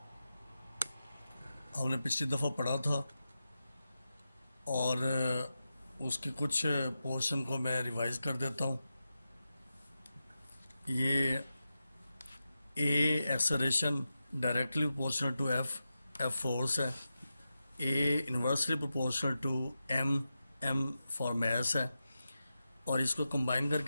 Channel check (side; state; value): both; inverted; correlation -0.91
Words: हमने पिछली दफ़ा पढ़ा था और उसके कुछ पोर्शन को मैं रिवाइज कर देता हूँ। ये a acceleration directly proportional to F force है। A inversely proportional to m for mass है। और इसको कंबाइन